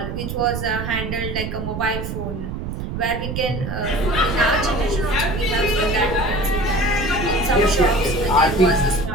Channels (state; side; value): noise; right; rumble, 5 dB below the sound